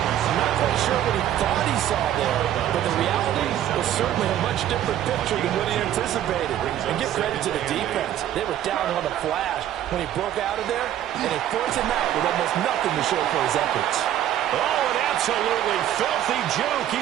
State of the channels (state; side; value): quieter; left; 11.6 dB